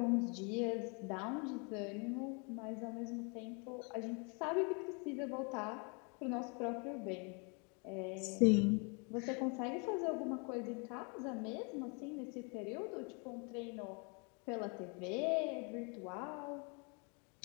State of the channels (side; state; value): right; quieter; 34.5 dB